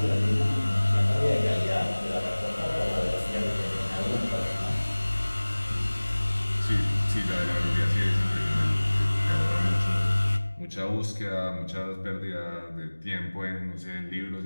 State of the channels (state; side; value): inverted; both; correlation -1.00